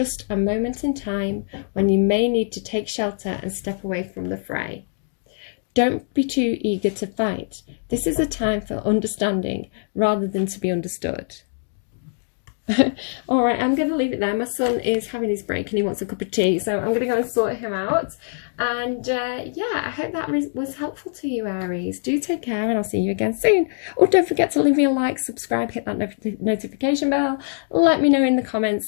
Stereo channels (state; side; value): silent; right; digital silence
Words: a moment in time when you may need to take shelter and step away from the fray. Don't be too eager to fight. This is a time for understanding rather than to be understood. All right, I'm going to leave it there. My son is having his break and he wants a cup of tea, so I'm going to go and sort him out. And yeah, I hope that was helpful to you, Aries. Do take care, and I'll see you again soon. Oh, don't forget to leave me a like, subscribe, hit that notification bell. Let me know in the